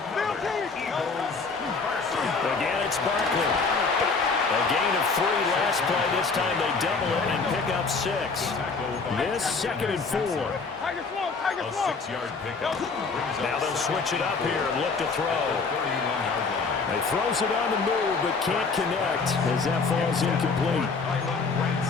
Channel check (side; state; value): right; quieter; 4.5 dB